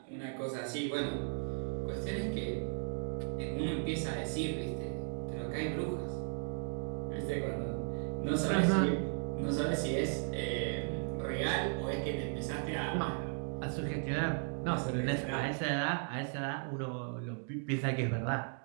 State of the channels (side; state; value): left; silent; 54 dB below the other